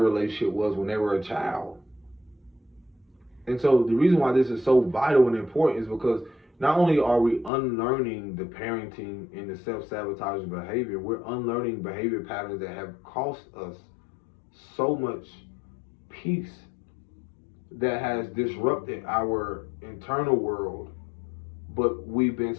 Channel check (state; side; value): drops out; right; at 7.5 s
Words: was when they were a child. And so the reason why this is so vital and important is because not only are we unlearning the parenting and the self-sabotaging behavior, we're unlearning behavior patterns that have cost us so much peace, that has disrupted our internal world, but we've been